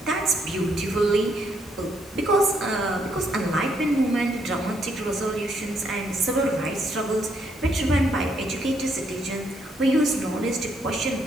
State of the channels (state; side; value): normal; both; correlation 0.73